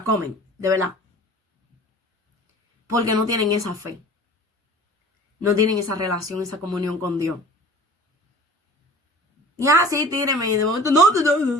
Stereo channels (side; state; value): both; normal; correlation 0.43